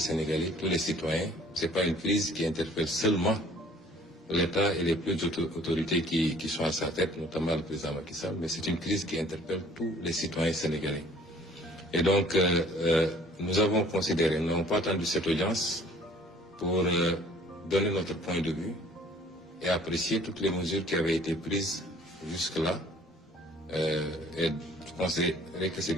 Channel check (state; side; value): normal; both; correlation 0.54